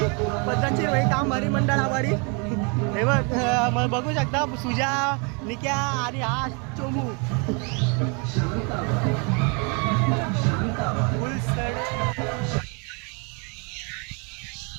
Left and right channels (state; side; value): quieter; left; 33.7 dB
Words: पद्धतशीर भाई काम भरी मंडळ आभारी हे बघ बघू शकता सुजा निक्या आणि हा चोमू फुल सडे